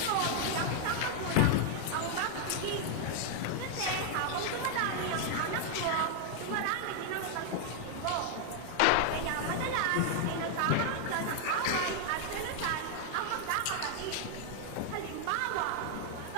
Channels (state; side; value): different; both; correlation 0.00